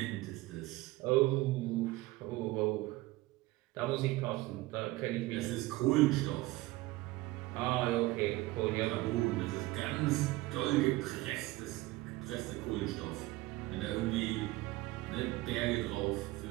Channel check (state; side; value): quieter; left; 19.4 dB